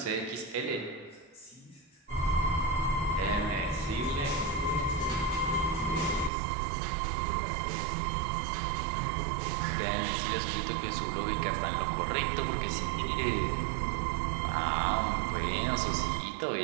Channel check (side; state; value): left; drops out; at 6.3 s